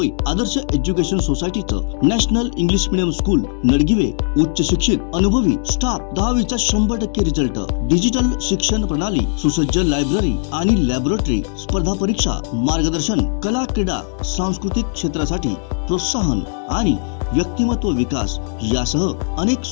आदर्श एज्युकेशन सोसायटीचं national English medium school Nadgive उच्च शिक्षित अनुभवी स्टाफ 10वीचा 100% रिझल्ट, डिजिटल शिक्षण प्रणाली, सुसज्ज लायब्ररी आणि लॅबोरेटरी, स्पर्धा परीक्षा मार्गदर्शन, कला क्रीडा सांस्कृतिक क्षेत्रासाठी प्रोत्साहन आणि व्यक्तिमत्व विकास यासह अनेक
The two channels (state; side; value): silent; right; 67 dB below the other